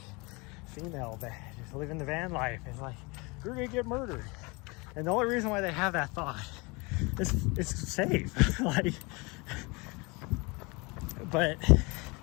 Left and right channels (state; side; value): quieter; right; 27.3 dB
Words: female that just living the van life is like, you're gonna get murdered. And the only reason why they have that thought is it's safe. Like, but